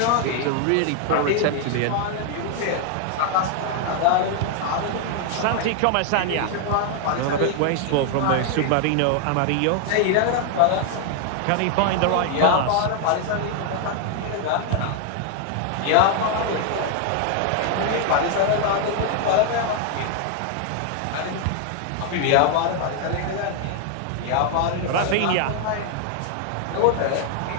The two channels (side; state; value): both; different; correlation 0.00